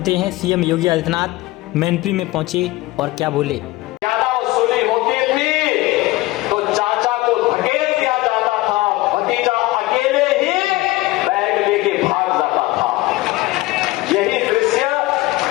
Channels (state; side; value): quieter; right; 19.4 dB